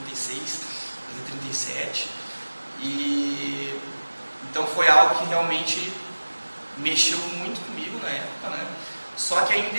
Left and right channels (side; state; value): both; inverted; correlation -1.00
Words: 36, fazer 37. E então foi algo que realmente mexeu muito comigo na época, né? Só que